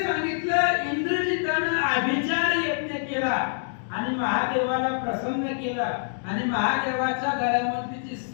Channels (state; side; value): silent; right; digital silence